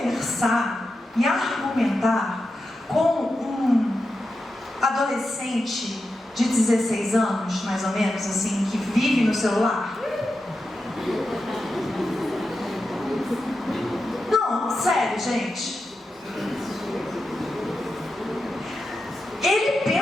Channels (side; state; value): both; normal; correlation 0.89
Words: e argumentar com um adolescente de 16 anos, mais ou menos, assim, que vive no celular? Não, sério, gente. Ele